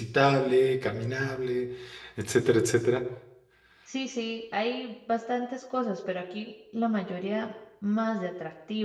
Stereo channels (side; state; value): both; identical; correlation 1.00